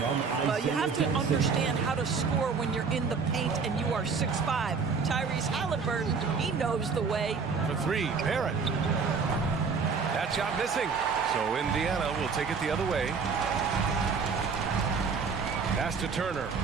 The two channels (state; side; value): quieter; left; 5.3 dB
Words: Well, you have to understand how to score when you're in the paint and you are 6'5". Tyrese Halliburton, he knows the way. For 3, Barrett. That shot missing. So Indiana will take it the other way. Pass to Turner.